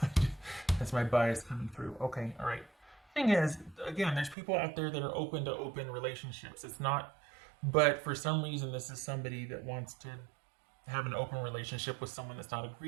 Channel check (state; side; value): drops out; left; at 4.4 s